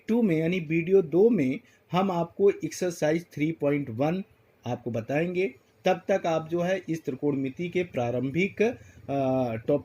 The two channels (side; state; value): both; identical; correlation 1.00